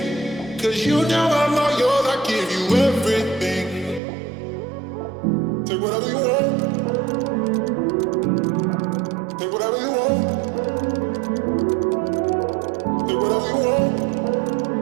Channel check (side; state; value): left; drops out; at 4.0 s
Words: Cause you know I'm all yours, I give you everything. Take whatever you want. Take whatever you want. Take whatever you want.